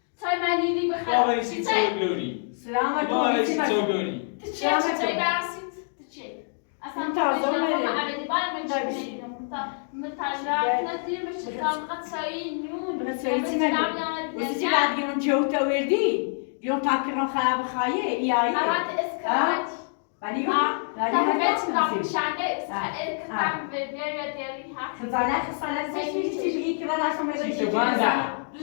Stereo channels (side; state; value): right; silent; 61 dB below the other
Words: تای من لیلی بابا بخیر ایسی تو گلوری. سلامت بابا ایسی تو گلوری. چه برسید چه اصلا تازه عملی باید من چی میدیم متجرد ندیر بشه کام قصایی نون وزی بعد گیرون جوتا وردی گیرون تاکرون خراب خایه ایایی اوقات اسکرات ولی تحبیت نام شنگه کتم به بیاری دیاری حق خزانه چی بگی که من اصلا چی تو بندم.